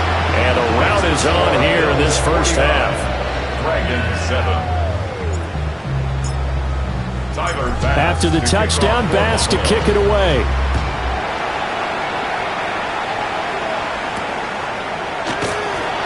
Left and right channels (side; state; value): both; identical; correlation 1.00